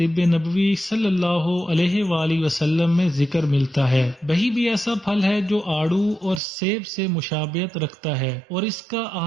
نبوی صلی اللہ علیہ وآلہ وسلم میں ذکر ملتا ہے۔ بہی بھی ایسا پھل ہے جو آڑو اور سیب سے مشابہت رکھتا ہے اور اس کا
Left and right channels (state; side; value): drops out; left; at 6.4 s